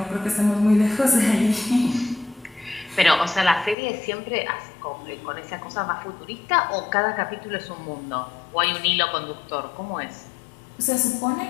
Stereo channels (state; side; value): drops out; right; at 3.8 s